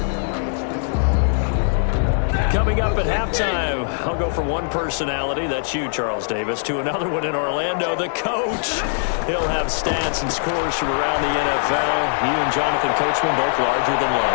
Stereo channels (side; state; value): right; silent; digital silence